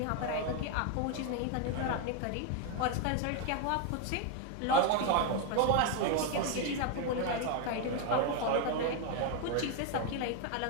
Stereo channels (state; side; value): different; both; correlation 0.01